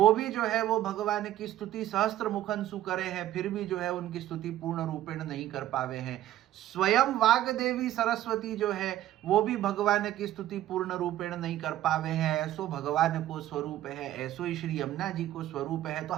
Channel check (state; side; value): quieter; left; 13.4 dB